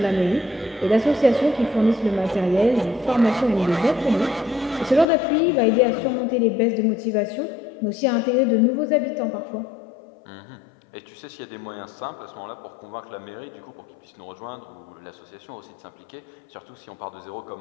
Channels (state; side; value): drops out; right; at 5.1 s